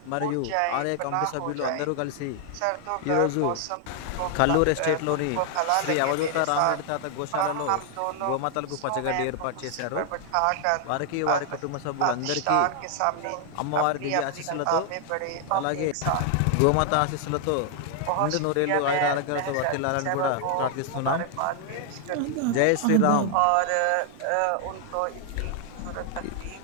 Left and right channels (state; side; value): different; both; correlation 0.00